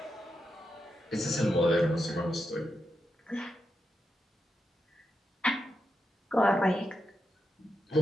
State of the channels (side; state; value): both; normal; correlation 0.87